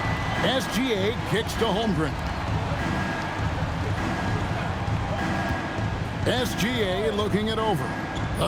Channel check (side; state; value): both; identical; correlation 1.00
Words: SGA kicks to Holmgren. SGA looking it over.